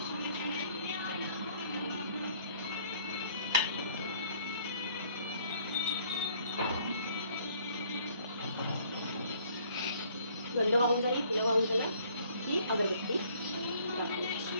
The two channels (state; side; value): inverted; both; correlation -0.60